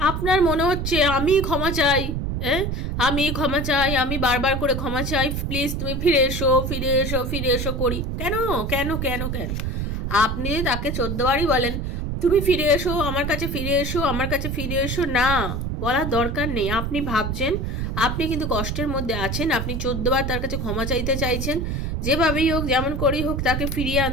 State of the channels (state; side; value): noise; right; rumble, 2 dB below the sound